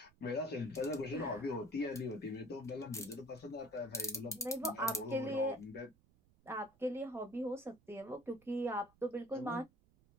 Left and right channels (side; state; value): right; noise; rumble, 29 dB below the sound